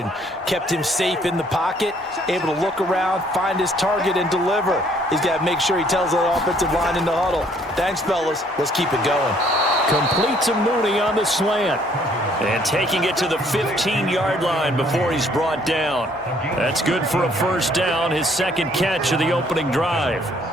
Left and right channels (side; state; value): both; normal; correlation 0.63